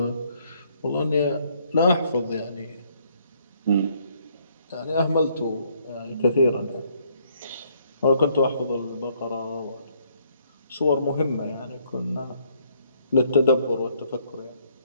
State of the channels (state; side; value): inverted; both; correlation -0.68